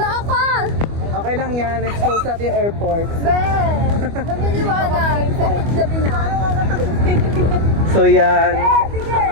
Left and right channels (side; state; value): left; late; 25 ms